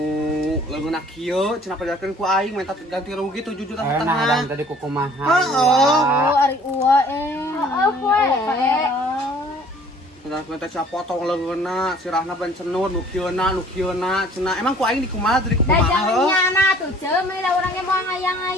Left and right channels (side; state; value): both; normal; correlation 0.54